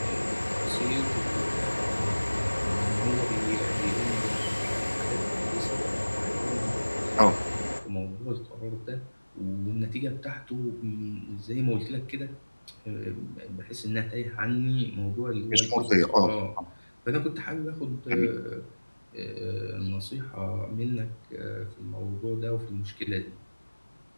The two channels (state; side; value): inverted; both; correlation -1.00